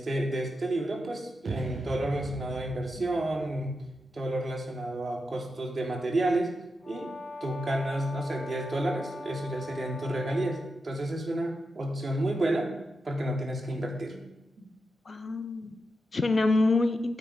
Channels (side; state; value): both; normal; correlation 0.87